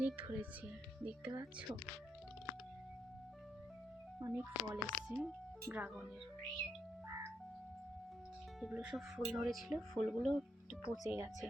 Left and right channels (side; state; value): both; normal; correlation 0.79